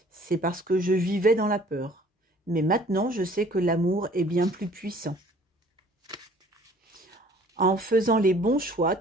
C'est parce que je vivais dans la peur. Mais maintenant, je sais que l'amour est bien plus puissant. En faisant les bons choix,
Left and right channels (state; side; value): normal; both; correlation 0.54